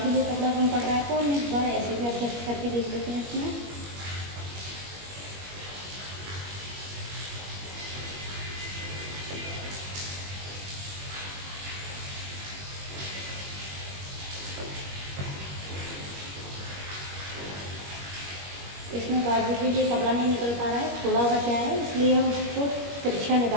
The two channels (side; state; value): left; late; 21 ms